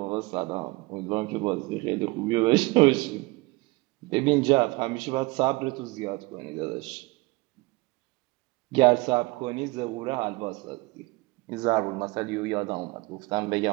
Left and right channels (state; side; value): quieter; left; 23.7 dB